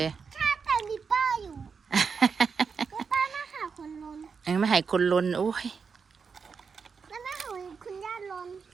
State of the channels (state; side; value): quieter; left; 5.6 dB